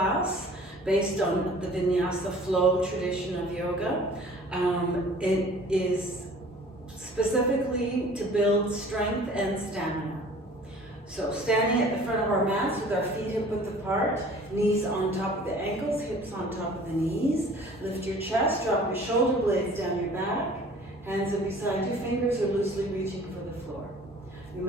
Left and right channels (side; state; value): both; normal; correlation 0.49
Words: based on the vinyasa flow tradition of yoga. It is specifically to build strength and stamina. So standing at the front of our mats with our feet hip-width apart, knees on top of the ankles, hips on top of the knees. Lift your chest, drop your shoulder blades down your back. Hands are beside you, fingers are loosely reaching for the floor. You